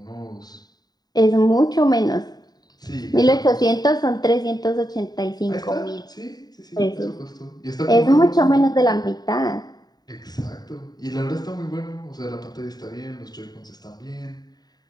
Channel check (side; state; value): right; late; 0.19 ms